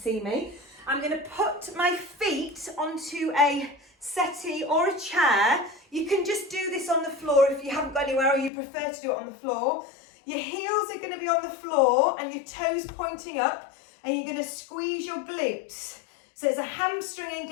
me. I'm going to put my feet onto a settee or a chair. You can just do this on the floor if you haven't got anywhere or you prefer to do it on the floor. Your heels are going to be on the floor and your toes pointing up, and you're going to squeeze your glutes. So it's a hamstring and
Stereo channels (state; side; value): drops out; right; at 8.5 s